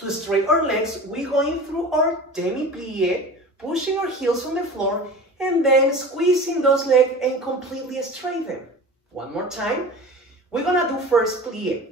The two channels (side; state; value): both; normal; correlation 0.36